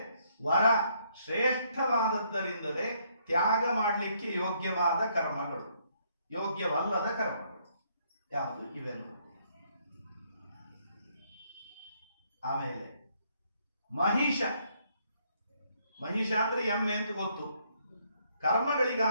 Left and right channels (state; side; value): inverted; both; correlation -0.70